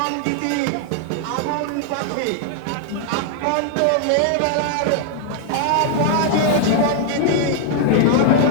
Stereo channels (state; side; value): different; both; correlation 0.00